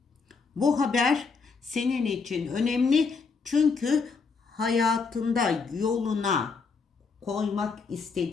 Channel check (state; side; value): quieter; right; 4.9 dB